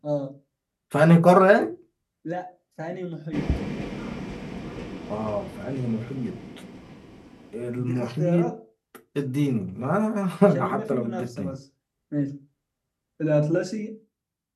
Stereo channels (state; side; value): identical; both; correlation 1.00